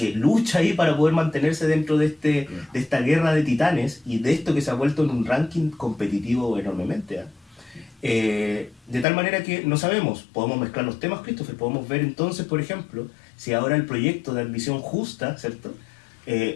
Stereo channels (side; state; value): right; drops out; at 9.1 s